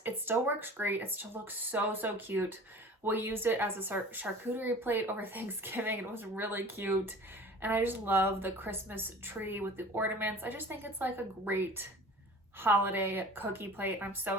it still works great. It still looks so cute. We used it as a charcuterie plate over Thanksgiving. It was really cute. And I just love the Christmas tree with the ornaments. I just think it's like a great holiday cookie plate. I'm so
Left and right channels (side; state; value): both; normal; correlation 0.42